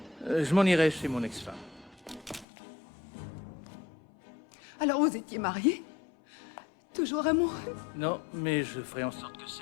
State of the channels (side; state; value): right; drops out; at 2.5 s